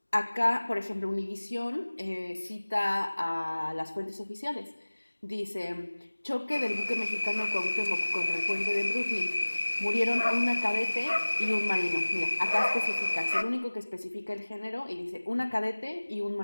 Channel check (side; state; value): both; inverted; correlation -1.00